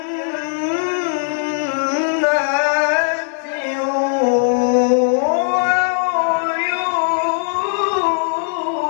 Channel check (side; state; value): right; silent; digital silence